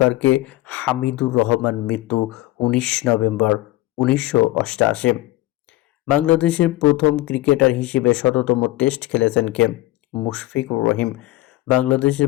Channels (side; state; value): right; quieter; 17.7 dB